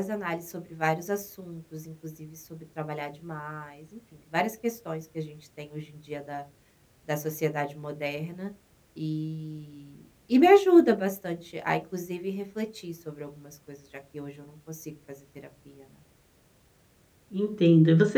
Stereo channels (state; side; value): identical; both; correlation 1.00